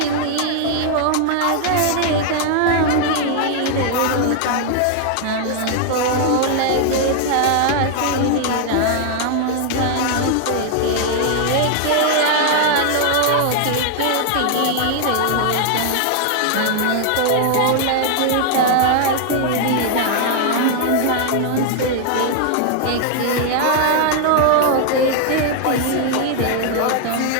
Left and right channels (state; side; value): different; both; correlation 0.00